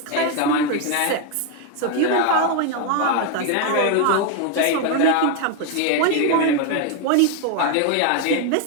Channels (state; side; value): different; both; correlation 0.01